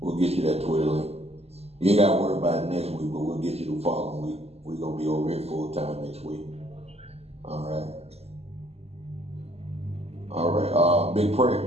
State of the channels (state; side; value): late; left; 0.30 ms